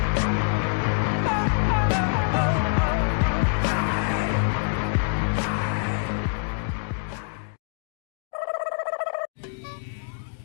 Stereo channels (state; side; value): silent; right; digital silence